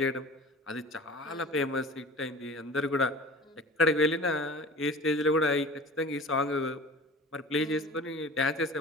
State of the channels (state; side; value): normal; both; correlation 0.40